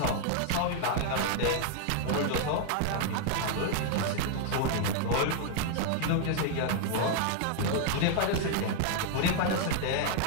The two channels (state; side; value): different; both; correlation 0.00